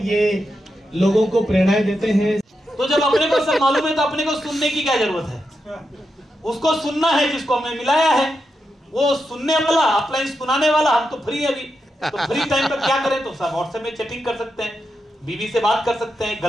ये लोगों को प्रेरणाएं देते हैं। तो जब अपने को सब मालूम है तो अपने को सुनने की क्या जरूरत है? उसको सुनना है जिसको हमने मिलाया है, वो सुनने वाला, अपलाइन सुनाने वाला। हम तो फ्री है अभी, तो फ्री टाइम पर क्या करें? तो सब व्हाट्सएप में चैटिंग कर सकते हैं, बीवी से बात कर सकते हैं,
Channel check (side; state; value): both; normal; correlation 0.87